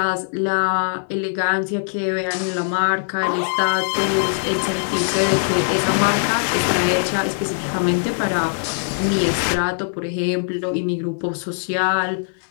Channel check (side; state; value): right; silent; digital silence